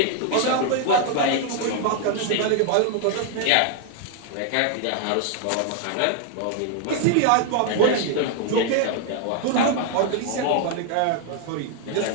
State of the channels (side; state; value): both; different; correlation 0.00